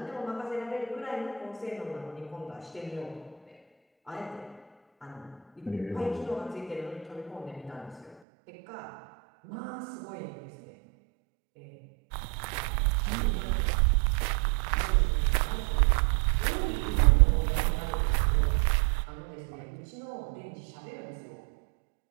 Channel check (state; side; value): drops out; left; at 8.2 s